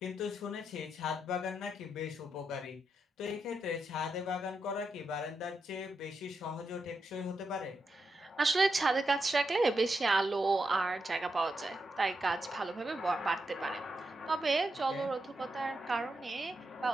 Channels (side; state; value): both; normal; correlation 0.85